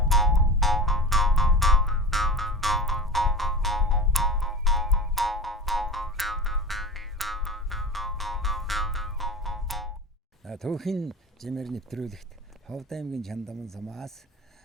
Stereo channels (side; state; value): both; normal; correlation 0.32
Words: Түүхэн жимэр нэвтрүүлэгт Ховд аймгийн Чандаман сумаас